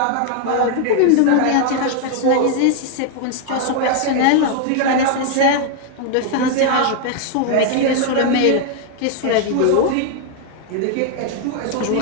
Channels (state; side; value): different; both; correlation 0.00